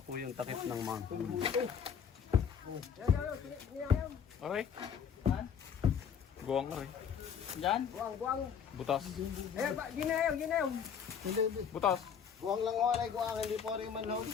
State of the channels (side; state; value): right; quieter; 7.4 dB